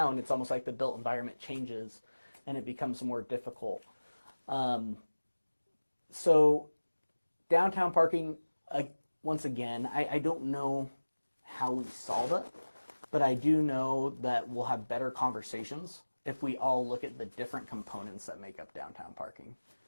it's almost like the built environment changes and it becomes more difficult. So downtown parking, once again, I don't know how we solve it, but I do know that we'll have better conversations if we all look at the different components that make up downtown parking.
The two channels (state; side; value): inverted; both; correlation -1.00